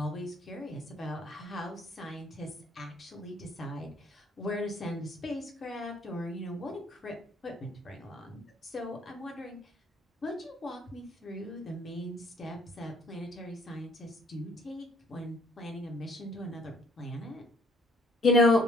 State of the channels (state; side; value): normal; both; correlation 0.61